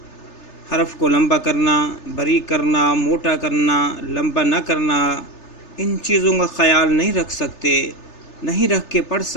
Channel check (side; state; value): right; late; 3.3 ms